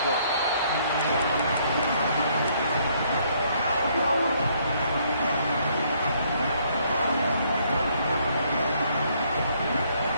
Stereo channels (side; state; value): both; inverted; correlation -0.67